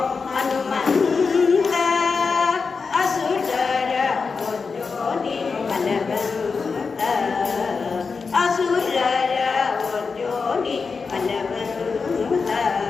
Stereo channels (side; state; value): right; quieter; 4.9 dB